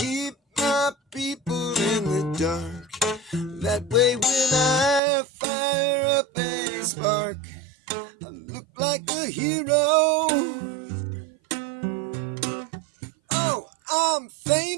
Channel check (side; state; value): left; drops out; at 5.0 s